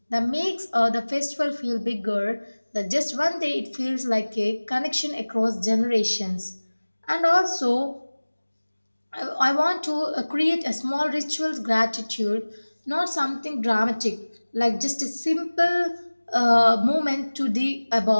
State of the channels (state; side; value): inverted; both; correlation -1.00